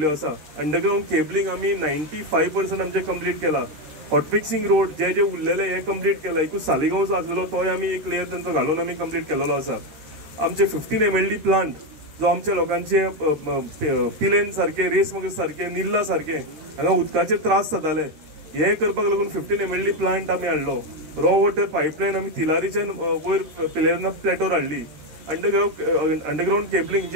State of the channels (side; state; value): left; late; 13 ms